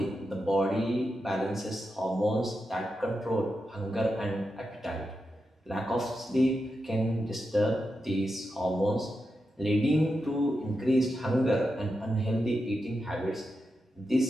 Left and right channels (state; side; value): normal; both; correlation 0.88